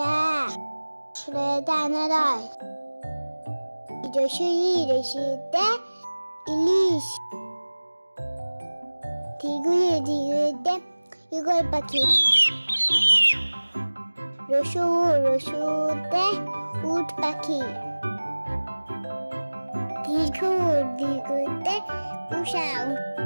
আ সরেতে আনারস, রসিতে ইলিশ, ধীরে ধীরেতে ইগল পাখি, রসুতে উট পাখি, দীর্ঘতে উষা,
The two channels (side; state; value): both; inverted; correlation -1.00